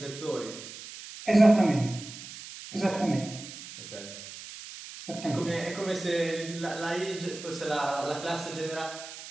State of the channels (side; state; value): right; noise; hiss, 13 dB below the sound